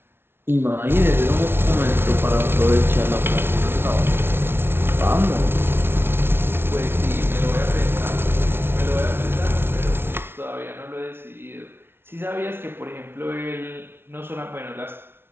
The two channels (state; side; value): late; left; 0.11 ms